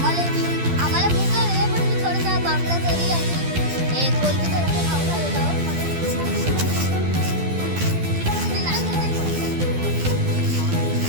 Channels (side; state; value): left; late; 12 ms